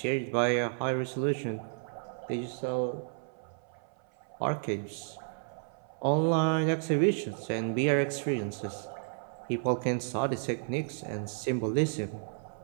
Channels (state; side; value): silent; left; 56 dB below the other